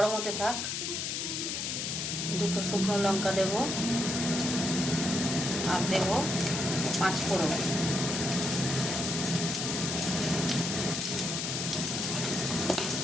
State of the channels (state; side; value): noise; left; hiss, 2 dB below the sound